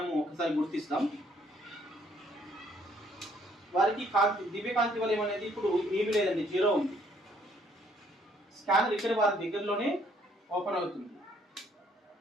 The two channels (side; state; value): both; normal; correlation 0.65